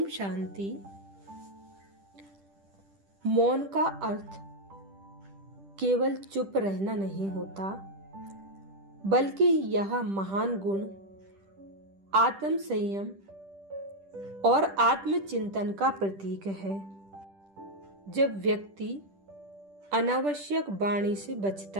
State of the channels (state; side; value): late; left; 10 ms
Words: शांति। मौन का अर्थ केवल चुप रहना नहीं होता, बल्कि यह महान गुण आत्म संयम और आत्मचिंतन का प्रतीक है। जब व्यक्ति अनावश्यक वाणी से